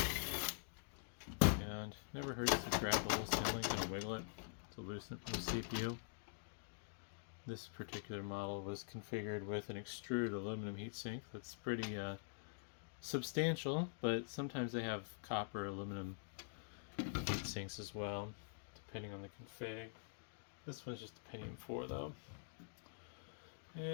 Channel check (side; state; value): right; silent; digital silence